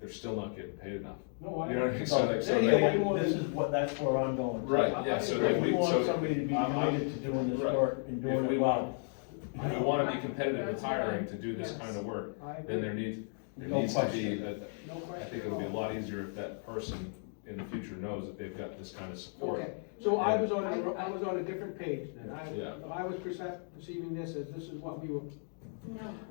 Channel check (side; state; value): right; silent; 55 dB below the other